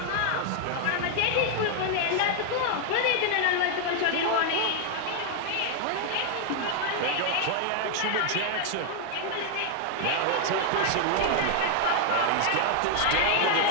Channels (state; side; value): different; both; correlation 0.00